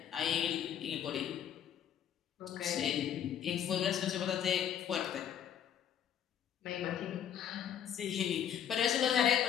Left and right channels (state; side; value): quieter; right; 9.4 dB